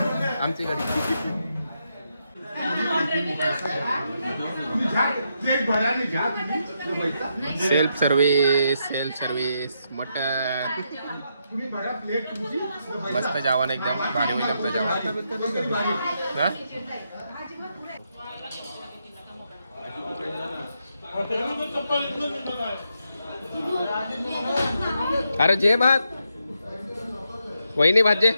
आमच्या घरी. सेल्फ सर्व्हिस मटन मस्त जेवण एकदम भारी होईल आमचं जेवण. हा? अरे जे भात वहिनी भात जे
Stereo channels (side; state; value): both; inverted; correlation -0.81